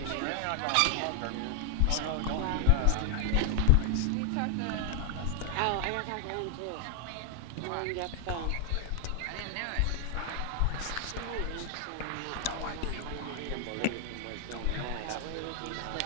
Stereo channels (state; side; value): different; both; correlation 0.00